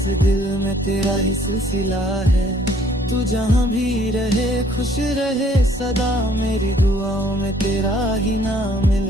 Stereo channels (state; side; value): normal; both; correlation 0.61